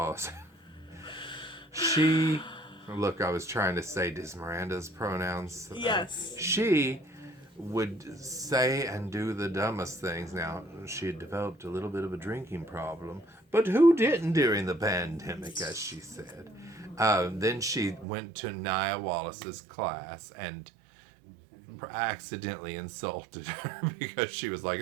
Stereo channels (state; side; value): drops out; left; at 18.1 s